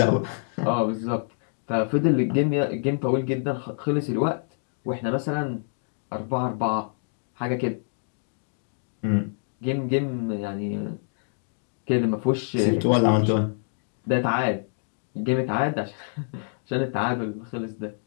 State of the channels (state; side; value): silent; right; digital silence